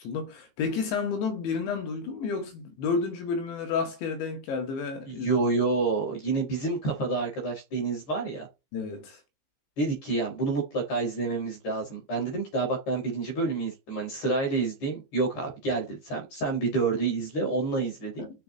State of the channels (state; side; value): late; right; 15 ms